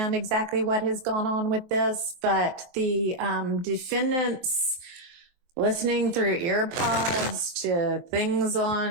exactly what has gone on with this, but the defendants listening through earpods to things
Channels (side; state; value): left; late; 23 ms